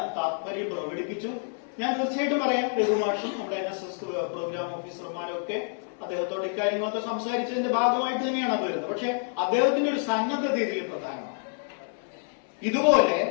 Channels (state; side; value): silent; right; 59 dB below the other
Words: താല്പര്യം പ്രകടിപ്പിച്ചു. ഞാൻ തീർച്ചയായിട്ടും പറയാം, രഘുമാഷും നമ്മുടെ NSS പ്രോഗ്രാം ഓഫീസർമാരും ഒക്കെ അദ്ദേഹത്തോട് ഇക്കാര്യങ്ങളൊക്കെ സംസാരിച്ചതിന്റെ ഭാഗമായിട്ട് തന്നെയാണ് അത് വരുന്നത്. പക്ഷെ അദ്ദേഹത്തിന്റെ ഒരു സന്നദ്ധത ഇതിൽ പ്രധാനമാണ്.